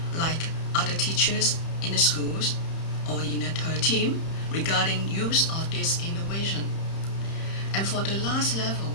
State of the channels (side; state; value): right; late; 31 ms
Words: like other teachers in the schools or in a team, regarding use of this innovation. And for the last level,